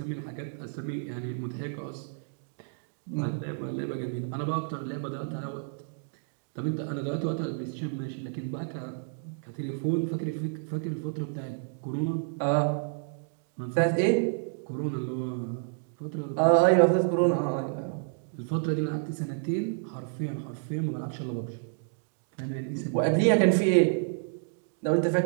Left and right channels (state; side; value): silent; left; digital silence